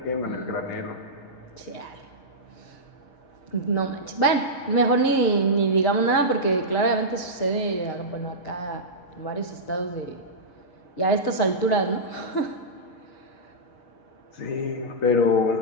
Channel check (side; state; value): right; late; 6.4 ms